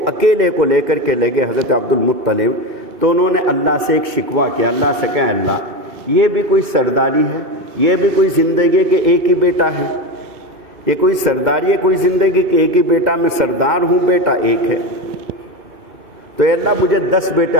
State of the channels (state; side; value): late; left; 2.6 ms